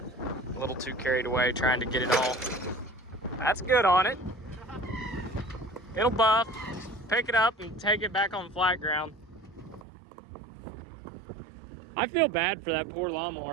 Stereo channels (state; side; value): drops out; left; at 9.9 s